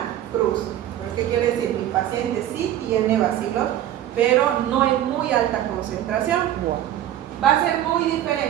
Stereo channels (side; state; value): left; quieter; 12.1 dB